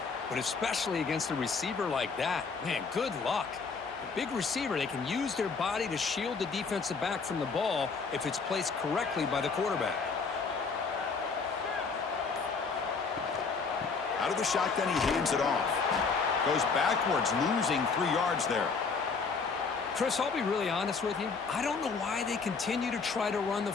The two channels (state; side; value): quieter; right; 4.9 dB